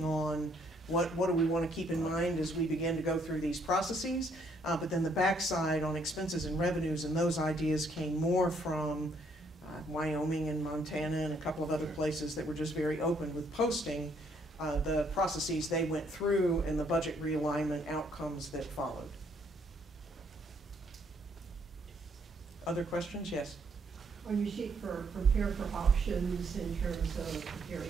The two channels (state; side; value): normal; both; correlation 0.69